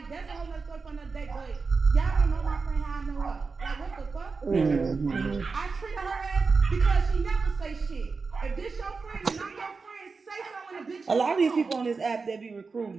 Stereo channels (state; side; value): quieter; left; 4.5 dB